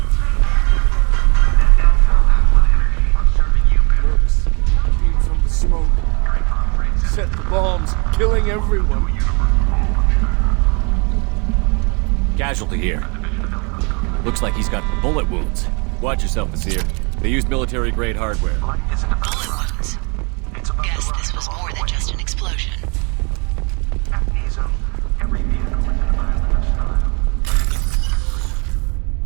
Mercs came from the smoke. Set the bombs, killing everyone. Casualty here. Looks like he's got bullet wounds. Watch yourself, Nasir. They used military-grade hardware. Bullet wounds. Guess this was more than just an explosion. Every vehicle is in a violent style.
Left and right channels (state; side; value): quieter; left; 32.4 dB